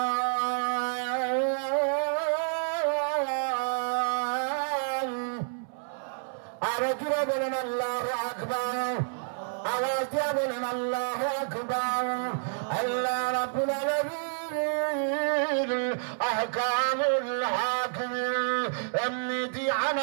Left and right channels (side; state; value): left; silent; 58 dB below the other